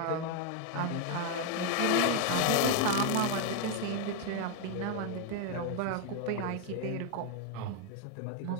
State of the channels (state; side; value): different; both; correlation 0.00